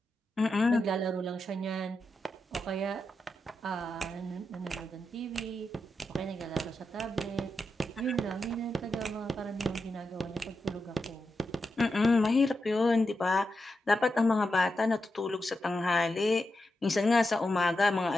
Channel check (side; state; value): both; normal; correlation 0.88